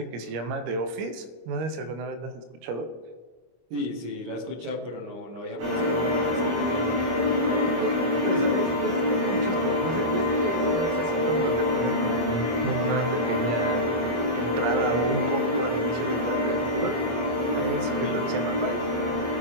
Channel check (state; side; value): late; left; 25 ms